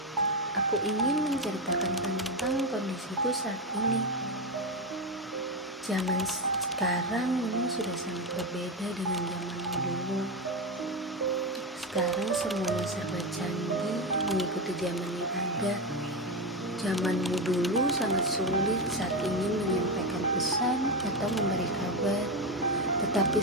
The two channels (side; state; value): both; normal; correlation 0.13